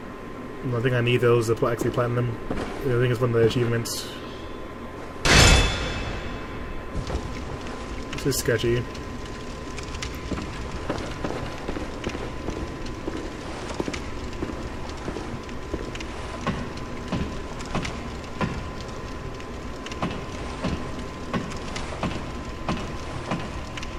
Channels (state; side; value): identical; both; correlation 1.00